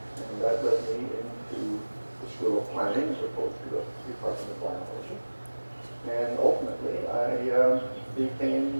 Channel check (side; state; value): both; inverted; correlation -1.00